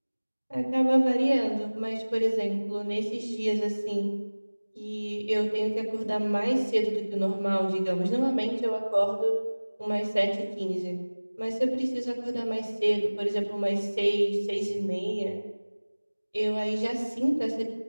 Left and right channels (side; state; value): both; inverted; correlation -1.00